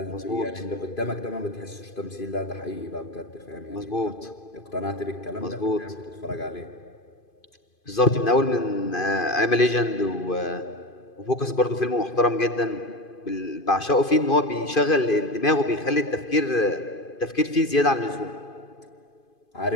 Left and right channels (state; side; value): late; right; 2.5 ms